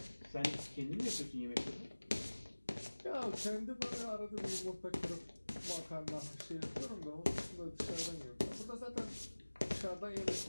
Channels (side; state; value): both; inverted; correlation -1.00